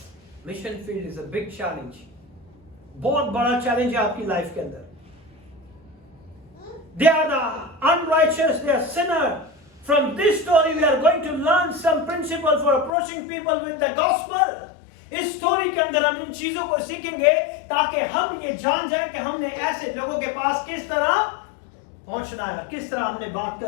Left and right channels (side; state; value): right; drops out; at 12.9 s